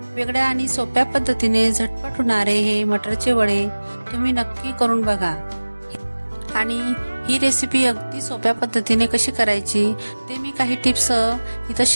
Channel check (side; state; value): both; inverted; correlation -1.00